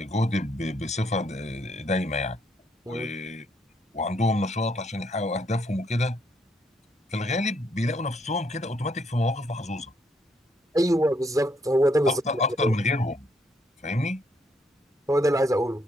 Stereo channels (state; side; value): normal; both; correlation 0.72